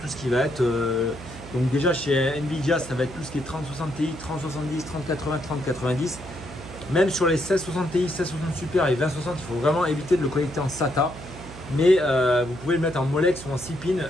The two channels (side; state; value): right; noise; hum, 14 dB below the sound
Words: ce qui va être... donc déjà chez Nvidia, ça va être tout ce qui est 3060 Ti, 3070, 3080, 3090. Même sur les 1660 Ti, 1660 Super et 2060, il faut vraiment éviter de le connecter en SATA. Mais vous pouvez le mettre en Molex ou en 6 pins